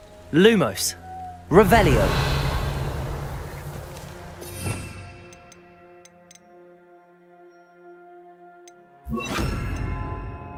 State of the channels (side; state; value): both; identical; correlation 1.00